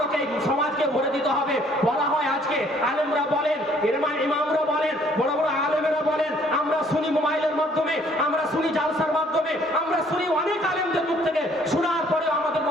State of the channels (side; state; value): both; normal; correlation 0.61